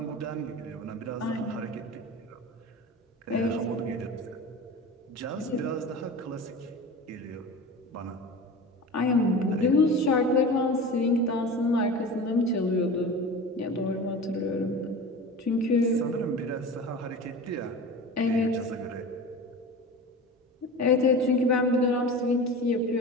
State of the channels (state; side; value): normal; both; correlation 0.33